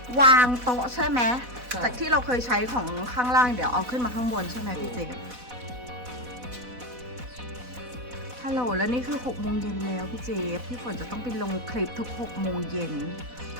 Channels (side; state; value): left; late; 4.1 ms